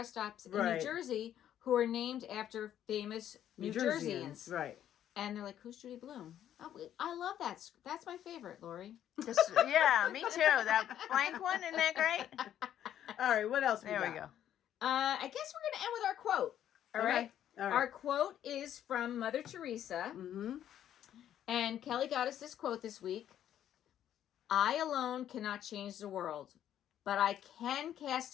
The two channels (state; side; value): quieter; right; 10.8 dB